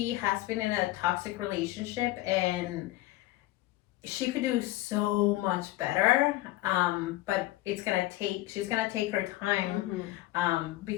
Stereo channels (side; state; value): right; quieter; 17.3 dB